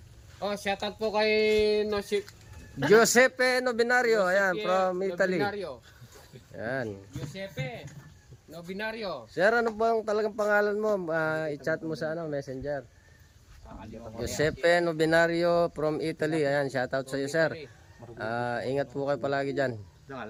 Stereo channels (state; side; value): identical; both; correlation 1.00